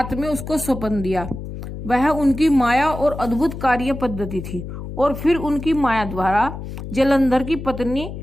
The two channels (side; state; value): left; noise; hum, 9 dB below the sound